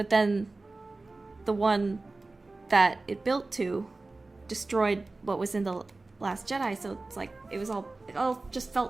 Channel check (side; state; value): left; quieter; 3.3 dB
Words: then the one that it built to destroyed what was in The Last Jedi, so it's like it all just